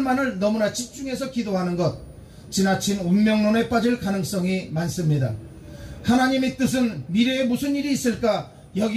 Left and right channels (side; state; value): both; identical; correlation 1.00